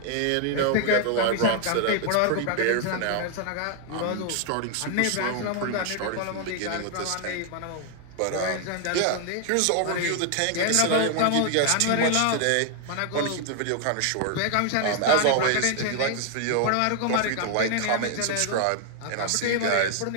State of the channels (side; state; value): both; different; correlation 0.00